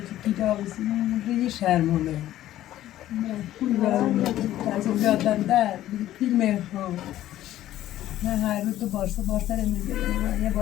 کتابی ری شرمونه ترسم بیادم در فیلم هم من هر روز تو بارسا میگیرم یه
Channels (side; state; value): right; quieter; 13.5 dB